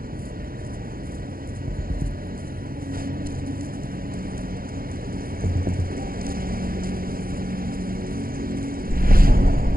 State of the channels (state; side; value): late; left; 0.42 ms